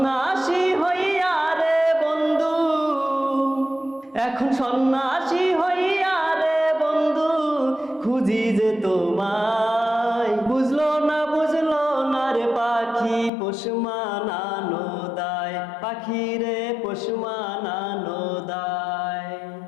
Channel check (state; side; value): drops out; right; at 13.3 s